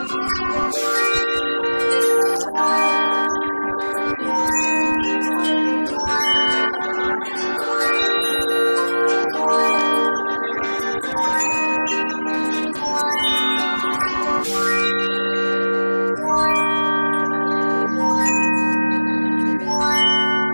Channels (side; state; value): both; inverted; correlation -1.00